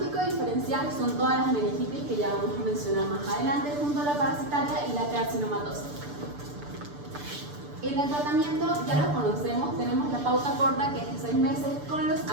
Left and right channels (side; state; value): left; late; 6.8 ms